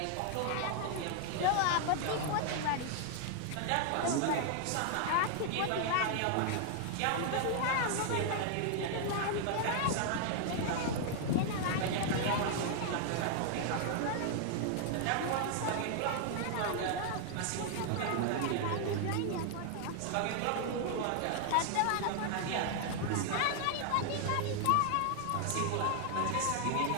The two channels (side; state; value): both; different; correlation 0.00